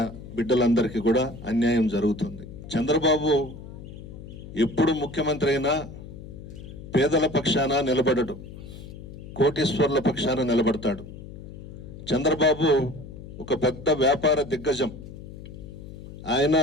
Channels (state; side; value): noise; left; hum, 13 dB below the sound